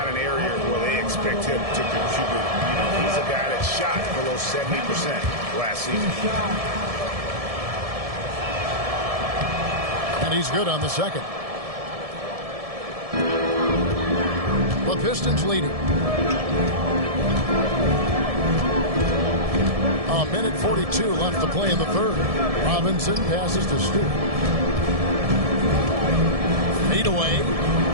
an area where they expect him to contribute. You know, he's a guy that shot below 70% last season. And he's good on the second. The Pistons leading. A minute 42 left to play in the third. Robinson passes to Stewart. Fade away.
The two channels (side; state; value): left; late; 1.7 ms